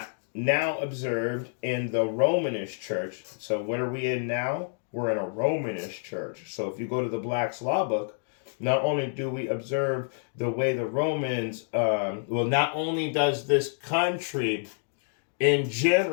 now observed in the Romanish church. So what are we in now? We're in a Romanish church. So if you go to the Black's Law Book, not only do we observe the way the Romans, not only does this country in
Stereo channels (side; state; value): right; silent; digital silence